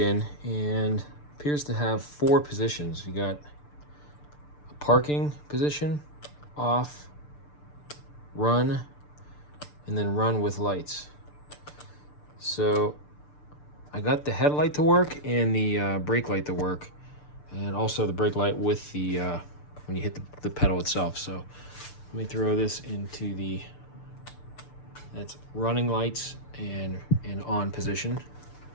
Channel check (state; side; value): late; right; 6.8 ms